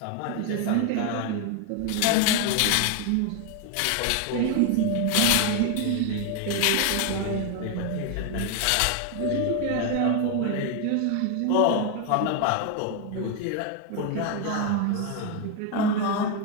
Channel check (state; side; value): different; both; correlation 0.01